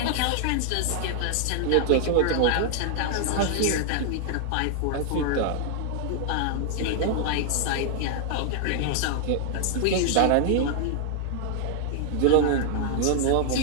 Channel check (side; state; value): both; different; correlation 0.00